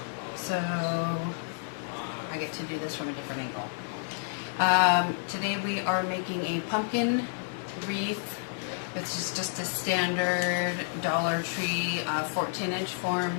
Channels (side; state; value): right; silent; digital silence